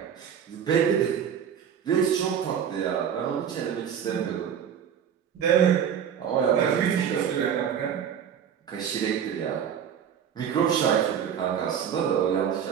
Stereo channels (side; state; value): left; quieter; 8.3 dB